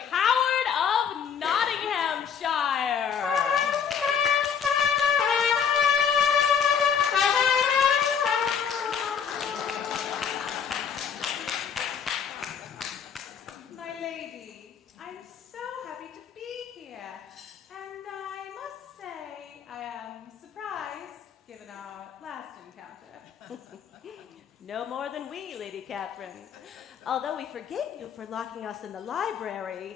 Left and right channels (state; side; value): quieter; right; 7.2 dB